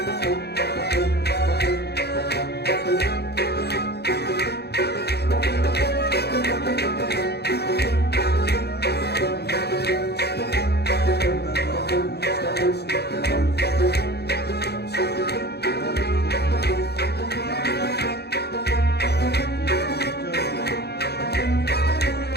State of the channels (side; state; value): right; late; 0.48 ms